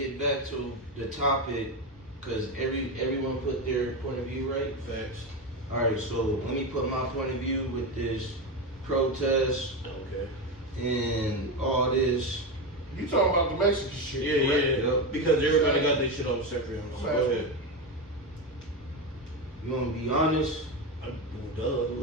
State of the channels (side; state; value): both; normal; correlation 0.15